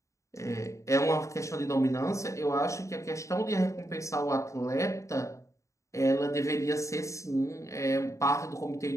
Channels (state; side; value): late; right; 0.15 ms